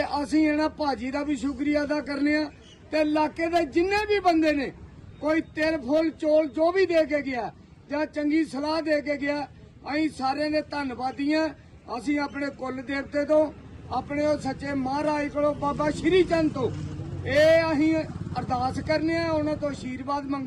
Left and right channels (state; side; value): identical; both; correlation 1.00